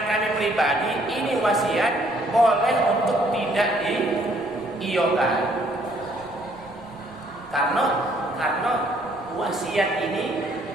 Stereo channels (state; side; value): noise; right; rumble, 25 dB below the sound